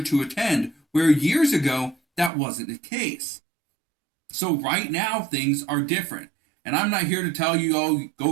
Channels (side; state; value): left; drops out; at 2.3 s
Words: to attend, where years ago that wasn't the case. So right now things are different. And I'm not here to tell you, oh, go